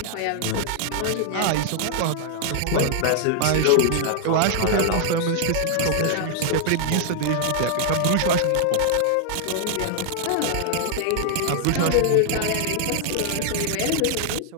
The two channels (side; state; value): both; different; correlation 0.00